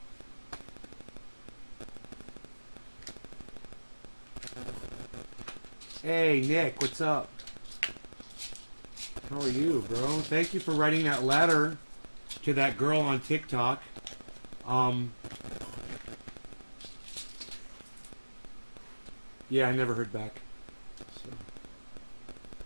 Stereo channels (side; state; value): both; inverted; correlation -1.00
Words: Hey, Nick, what's up? How are you, bro? Thank you for writing that letter to that girl on TikTok. Yeah, I never heard back. So.